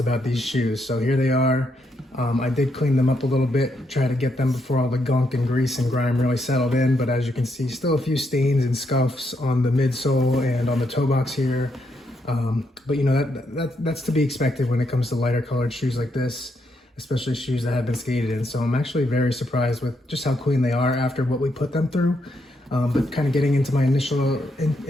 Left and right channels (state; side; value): normal; both; correlation 0.78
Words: these shoes. So here they are. I did clean them up a little bit, try to get them before all the gunk and grease and grime really settled in, but as you can see, still a few stains and scuffs on the midsole and on the toe box here. But you know, that's to be expected when it comes to lighter colored shoes like this, especially shoes that have been skated in. So I'm actually very surprised with just how clean they are after what we put them through. But kind of getting into my initial